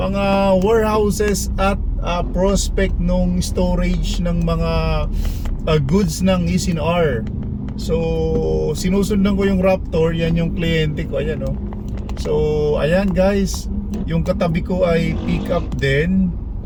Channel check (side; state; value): both; identical; correlation 1.00